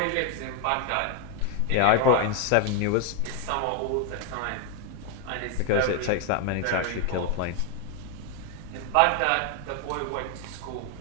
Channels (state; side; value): different; both; correlation 0.01